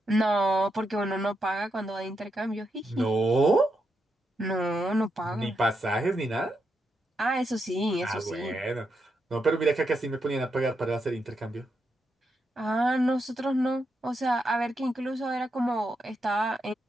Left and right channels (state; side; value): normal; both; correlation 0.83